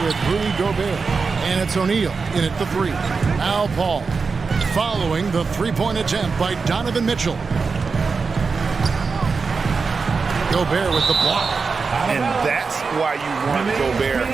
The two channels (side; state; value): left; quieter; 4.8 dB